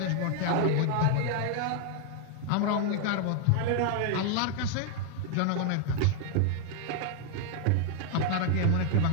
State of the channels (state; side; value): different; both; correlation 0.00